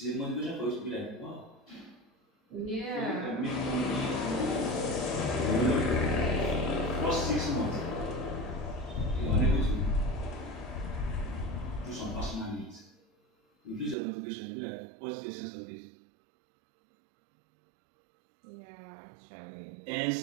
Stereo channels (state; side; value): drops out; left; at 14.0 s